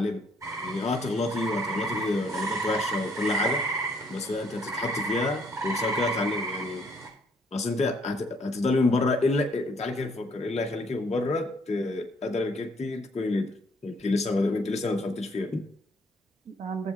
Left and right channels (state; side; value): normal; both; correlation 0.66